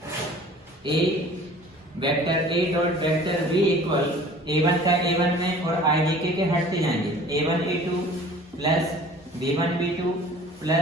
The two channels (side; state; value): both; normal; correlation 0.47